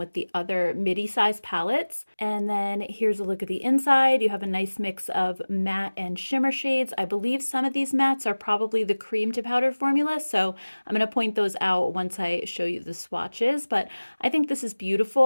the other midi-size palettes. And then here's a look at the inside. You have a nice mix of matte and shimmer shades. I believe some of these mattes are probably the cream to powder formula, so I'm going to point those out once I show you the swatches. But I think this is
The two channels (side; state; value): both; inverted; correlation -1.00